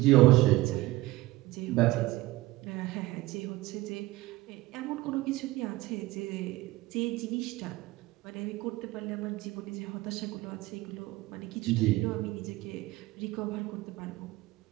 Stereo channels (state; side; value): quieter; left; 18.7 dB